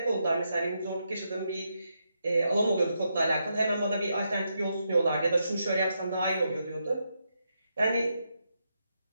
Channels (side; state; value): both; inverted; correlation -0.82